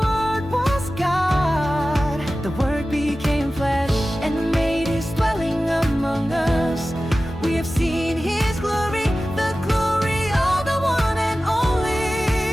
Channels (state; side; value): normal; both; correlation 0.95